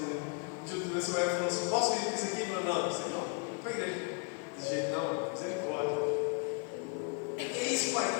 Um dia desse o Evo falou assim: posso vir com isso aqui? Eu falei: não, isso aí não. Vou para a igreja. Desse jeito não, misericórdia. Que é isso, pai?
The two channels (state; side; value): quieter; right; 36.0 dB